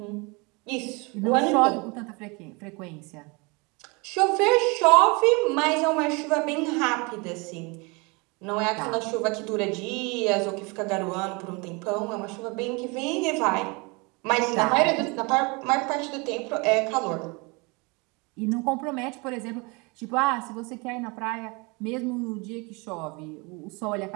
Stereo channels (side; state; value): left; quieter; 28.4 dB